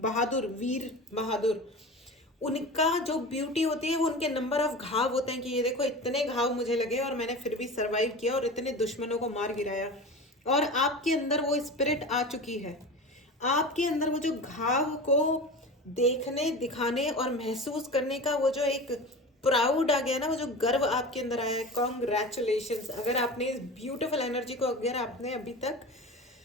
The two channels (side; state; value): both; normal; correlation 0.32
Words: वीर बहादुर, उनका जो ब्यूटी होती है वो उनके नंबर ऑफ घाव होते हैं कि ये देखो इतने घाव मुझे लगे और मैंने फिर भी सरवाइव किया और इतने दुश्मनों को मार गिराया। और आपके अंदर वो स्पिरिट आ चुकी है, आपके अंदर वो जो घाव को देखने, दिखाने और महसूस करने का वो जो एक प्राउड आ गया ना, वो जो गर्व आपके अंदर आया है। कॉन्ग्रेचुलेशंस। अगर आपने इस ब्यूटीफुल एनर्जी को अगर आपने अभी तक